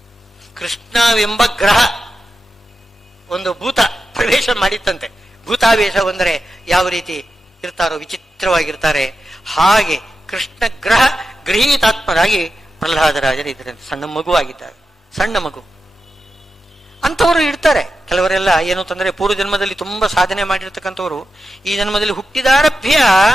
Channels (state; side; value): normal; both; correlation 0.90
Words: ಕೃಷ್ಣವೆಂಬ ಗ್ರಹ ಒಂದು ಭೂತ ಪ್ರವೇಶ ಮಾಡಿತ್ತಂತೆ. ಭೂತಾವೇಶ ಅಂದರೆ ಯಾವ ರೀತಿ ಇರ್ತಾರೋ, ವಿಚಿತ್ರವಾಗಿರ್ತಾರೆ, ಹಾಗೆ ಕೃಷ್ಣ ಗ್ರಹ ಗೃಹೀತಾತ್ಮರಾಗಿ ಪ್ರಹ್ಲಾದರಾಜರು ಇದ್ರಂತೆ. ಸಣ್ಣ ಮಗು ಆಗಿದ್ದಾರೆ, ಸಣ್ಣ ಮಗು. ಅಂಥವರು ಇರ್ತಾರೆ. ಕೆಲವರೆಲ್ಲ ಏನು ಅಂತಂದ್ರೆ ಪೂರ್ವ ಜನ್ಮದಲ್ಲಿ ತುಂಬಾ ಸಾಧನೆ ಮಾಡಿರ್ತಕ್ಕಂಥವ್ರು ಈ ಜನ್ಮದಲ್ಲಿ ಹುಟ್ಟಿದಾರಭ್ಯ